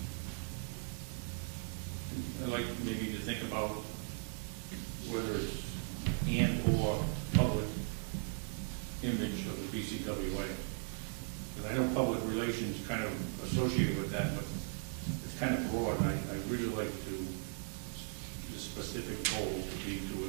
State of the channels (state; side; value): silent; left; 52 dB below the other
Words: I'd like maybe to think about whether it's and/or public image of the BCWA. Because I know public relations kind of associated with that, but it's kind of broad, and I really like the specific goal to be to